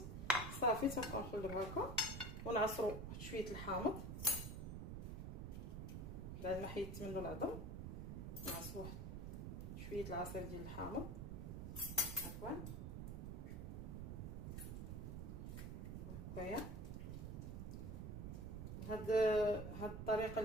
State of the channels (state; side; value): noise; right; rumble, 5 dB below the sound